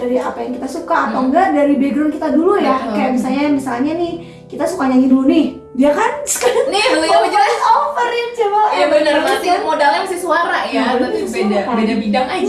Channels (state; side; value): identical; both; correlation 1.00